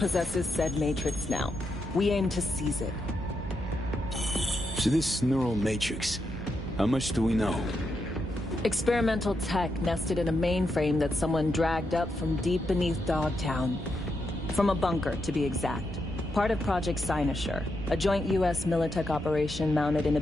said matrix now. We aim to seize it. So this neural matrix, how much do we know? Experimental tech nested in a mainframe that someone dragged up from deep beneath Dogtown. From a bunker, to be exact. Part of Project Cynosure, a joint U.S. Militech operation mounted in a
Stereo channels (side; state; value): both; normal; correlation 0.83